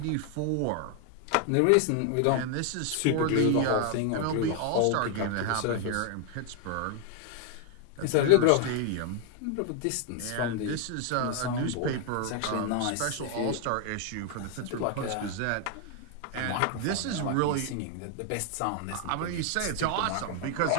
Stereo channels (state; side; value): different; both; correlation 0.00